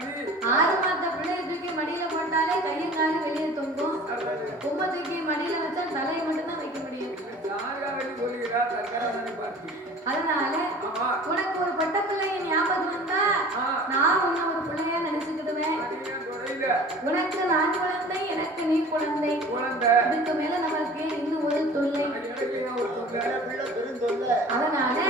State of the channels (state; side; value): normal; both; correlation 0.44